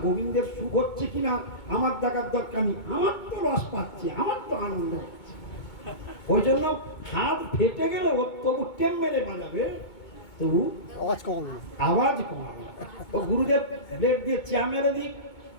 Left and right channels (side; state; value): right; late; 2.2 ms